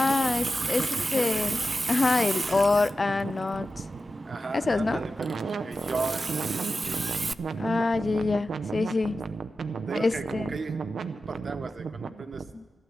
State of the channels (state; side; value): normal; both; correlation 0.92